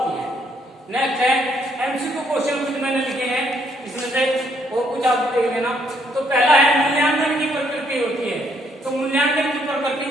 है। नेक्स्ट है एमसीक्यू क्वेश्चन कुछ मैंने लिखे हैं, इसमें से और कुछ आप देख लेना। तो पहला है मूल्यांकन की प्रकृति होती है। तो मूल्यांकन की प्रकृति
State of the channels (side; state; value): both; normal; correlation 0.70